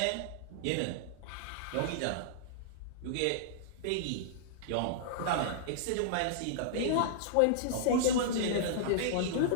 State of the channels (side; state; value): both; different; correlation -0.02